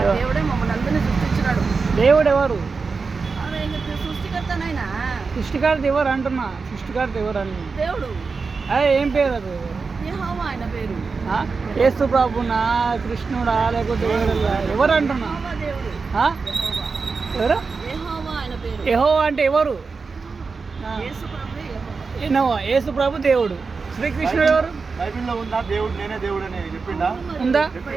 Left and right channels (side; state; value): left; quieter; 4.7 dB